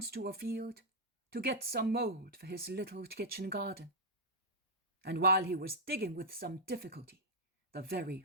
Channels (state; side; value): normal; both; correlation -0.06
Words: to a field to get some mould for his little kitchen garden, and while he was digging with some difficulty the very